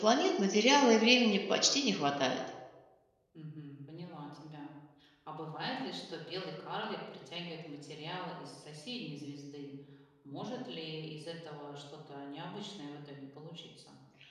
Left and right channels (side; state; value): both; identical; correlation 1.00